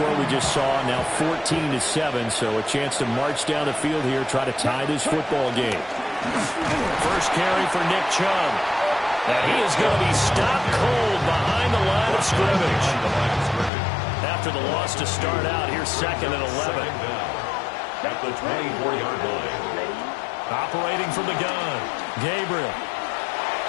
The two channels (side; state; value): right; drops out; at 13.7 s